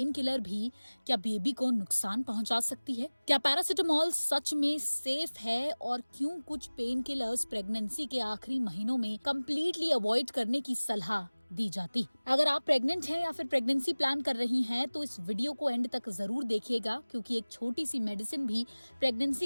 किलर भी क्या बेबी को नुकसान पहुंचा सकती है? क्या पैरासिटामोल सच में सेफ है और क्यों कुछ पेन किलर्स प्रेगनेंसी के आखिरी महीनों में कंप्लीटली अवॉइड करने की सलाह दी जाती? अगर आप प्रेग्नेंट हैं या फिर प्रेगनेंसी प्लान कर रही हैं तो इस वीडियो को एंड तक जरूर देखिएगा, क्योंकि एक छोटी सी मेडिसिन भी प्रेगनेंसी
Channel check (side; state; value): both; inverted; correlation -1.00